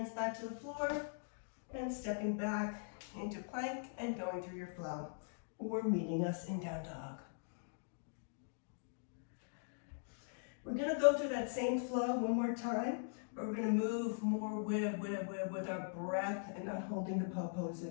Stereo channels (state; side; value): silent; right; digital silence